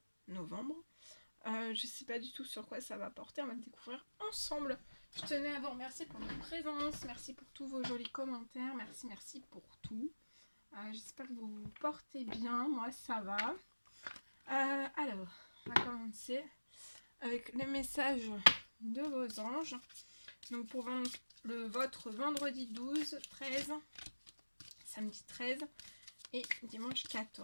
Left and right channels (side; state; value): both; inverted; correlation -1.00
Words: novembre. Je sais pas du tout sur quoi ça va porter, on va le découvrir ensemble. Je tenais à vous remercier pour votre présence, merci pour tous vos jolis commentaires, merci pour tout. J'espère que vous vous portez bien, moi ça va. Alors, on va commencer avec les messages de vos anges. Donc pour votre vendredi 12, 13, samedi 13 et dimanche